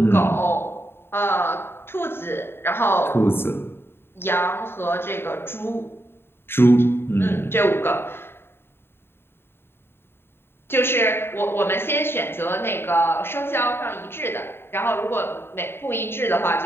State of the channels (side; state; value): right; late; 0.11 ms